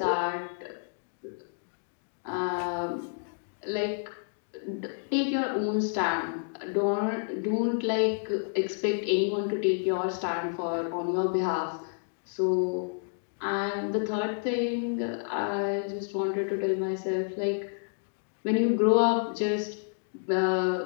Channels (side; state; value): right; silent; digital silence